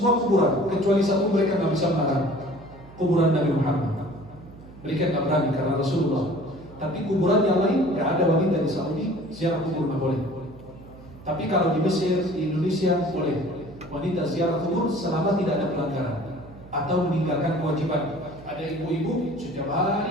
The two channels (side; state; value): right; noise; hum, 19 dB below the sound